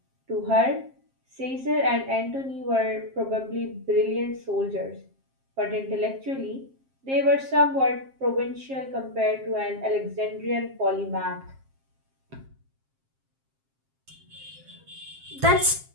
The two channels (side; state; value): left; late; 7.5 ms